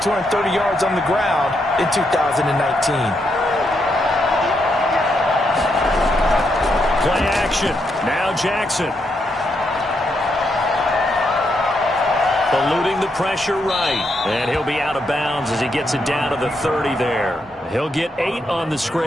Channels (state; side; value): normal; both; correlation 0.80